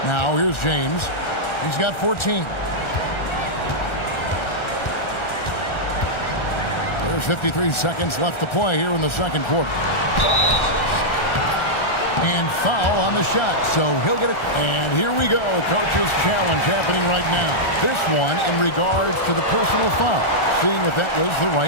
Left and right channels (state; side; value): late; right; 1.4 ms